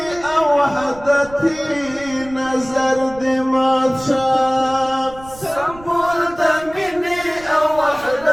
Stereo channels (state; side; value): noise; right; rumble, 19 dB below the sound